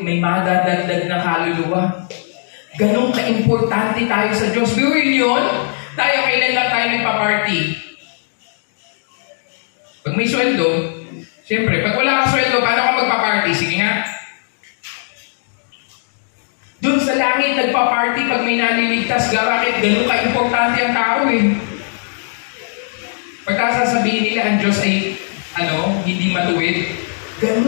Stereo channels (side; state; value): right; silent; digital silence